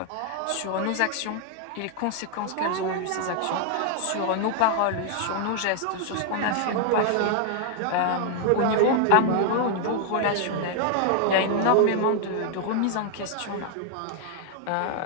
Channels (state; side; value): different; both; correlation 0.00